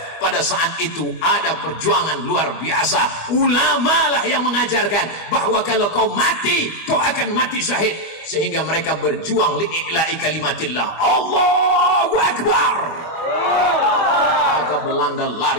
pada saat itu ada perjuangan luar biasa. Ulama lah yang mengajarkan bahwa kalau kau mati, kau akan mati syahid. Sehingga mereka berjuang li'i'la'i kalimatillah. Allahu Akbar. Maka Belanda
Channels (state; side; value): late; right; 25 ms